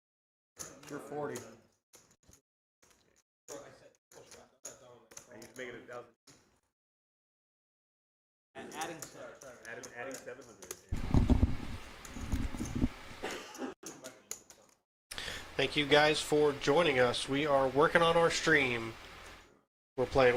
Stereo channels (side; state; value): both; identical; correlation 1.00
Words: You're 40. I used to make it 1,000. Adding 700. Thank you guys for joining us. We are working on our stream. We're playing